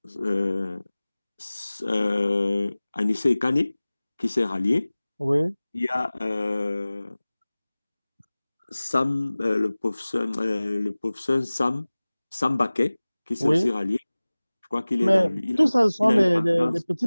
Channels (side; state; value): both; inverted; correlation -0.99